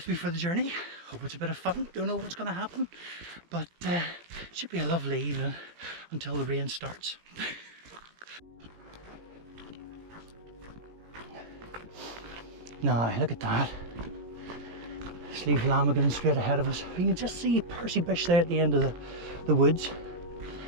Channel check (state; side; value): late; left; 18 ms